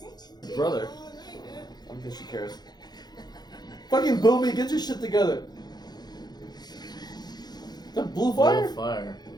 it? Brother. I don't think she cares. Fucking Boomy, get your shit together. That blue fire? Blue fire.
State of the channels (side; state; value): right; late; 0.20 ms